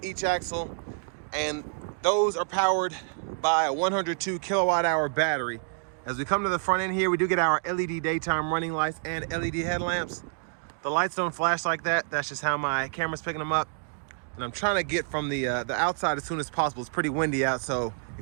each axle, and those are powered by a 102 kilowatt hour battery. As we come to the front end here, we do get our LED daytime running lights and LED headlamps. The lights don't flash like that. That's just how my camera's picking them up. And I'm trying to get from the outside as soon as possible. It's pretty windy out, so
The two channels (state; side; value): silent; left; 59 dB below the other